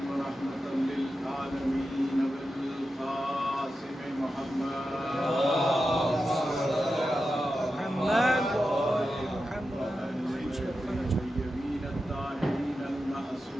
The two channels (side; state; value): both; normal; correlation 0.91